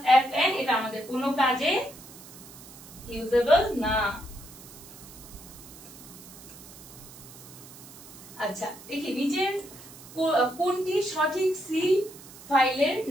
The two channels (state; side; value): noise; right; hiss, 18 dB below the sound